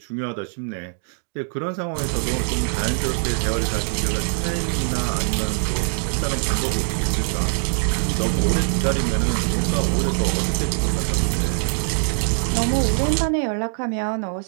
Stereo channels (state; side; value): silent; left; 64 dB below the other